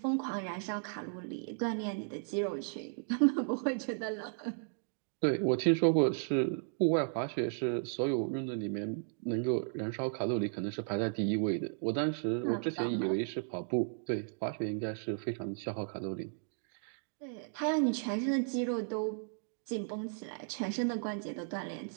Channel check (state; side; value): silent; left; digital silence